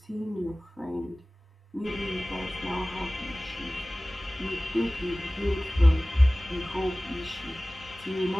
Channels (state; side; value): normal; both; correlation 0.98